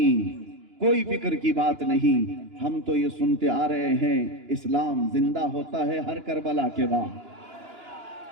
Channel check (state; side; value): late; left; 2.9 ms